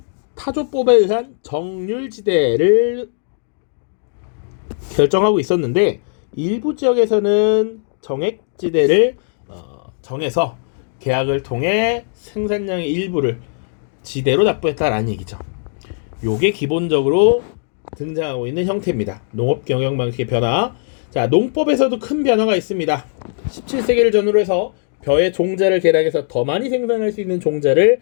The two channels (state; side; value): silent; right; digital silence